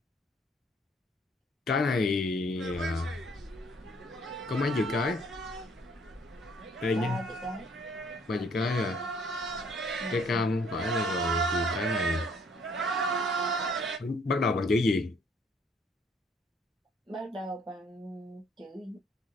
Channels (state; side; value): normal; both; correlation 0.62